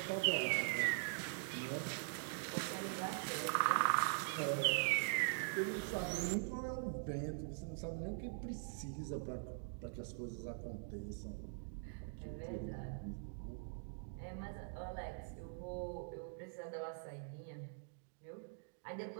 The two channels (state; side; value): silent; left; digital silence